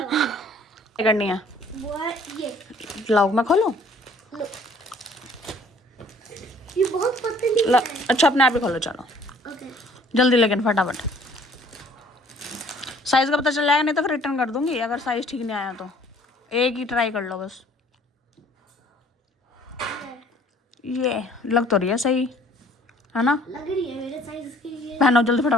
क्या करनी है? ये लाओ मैं खोलूं? ये बहुत पतली है। अच्छा अपने आप ही खोलो, चलो ओके जल्दी, लेकिन फटाफट। साइज का पता चल जाएगा, नहीं तो फिर रिटर्न कर दूंगी अगर साइज ठीक नहीं आया तो। एक ही ट्राई कर लो बस। ये लग तो रही है सही, है ना? लग रही है मेरे साइज के लिए। पहनो जल्दी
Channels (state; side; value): normal; both; correlation 0.56